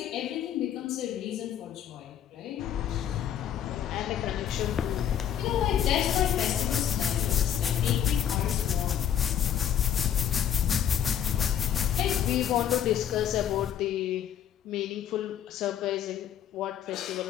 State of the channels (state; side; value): quieter; right; 9.7 dB